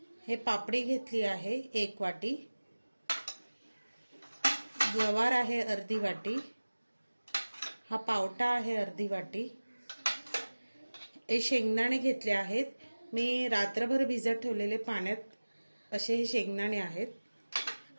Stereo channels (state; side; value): inverted; both; correlation -1.00